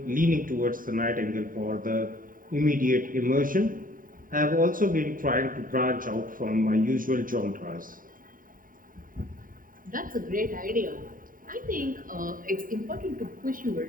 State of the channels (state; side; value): late; left; 0.40 ms